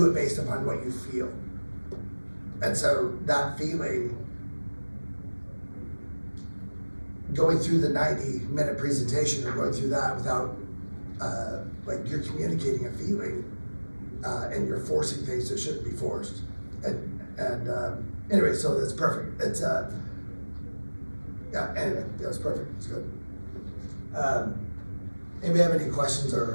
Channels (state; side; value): inverted; both; correlation -1.00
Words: it based upon what you feel. And so that feeling, going through the 90-minute presentation or going through that without, like you're communicating a feeling, and you're forcing things that shouldn't be forced. And anyway, so that's perfect. It's, yeah, anyway, yeah, it's perfect, it's good. Anybody have any questions